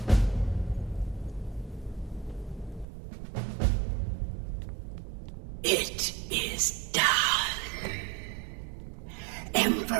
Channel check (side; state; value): left; drops out; at 2.9 s